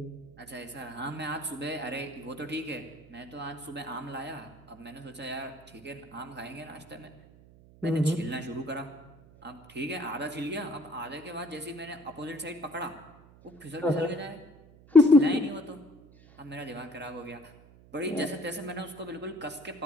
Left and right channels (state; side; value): noise; right; hum, 23 dB below the sound